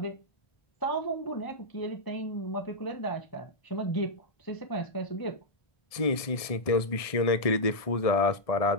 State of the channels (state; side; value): late; right; 1.7 ms